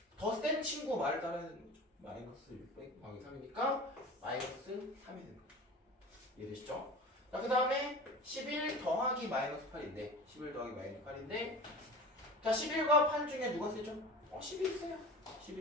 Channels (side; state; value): both; normal; correlation 0.35